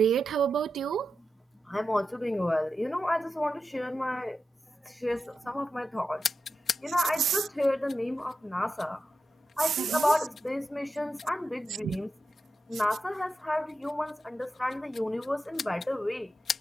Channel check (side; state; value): both; normal; correlation 0.90